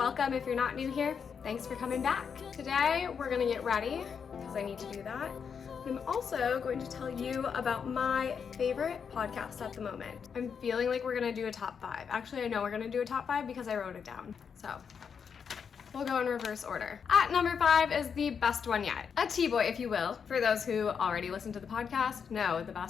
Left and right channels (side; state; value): right; quieter; 6.6 dB